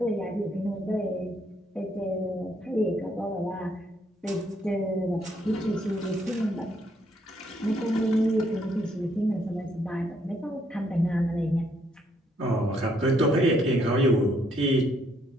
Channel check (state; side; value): normal; both; correlation 0.71